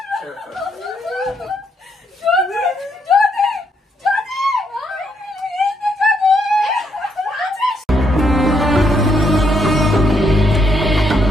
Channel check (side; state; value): both; normal; correlation 0.75